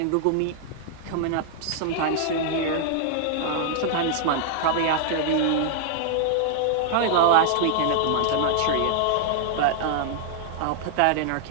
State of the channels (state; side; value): different; both; correlation -0.01